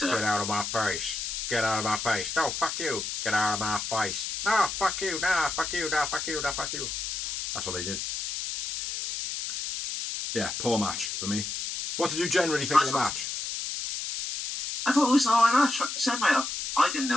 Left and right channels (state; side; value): noise; left; hiss, 4 dB below the sound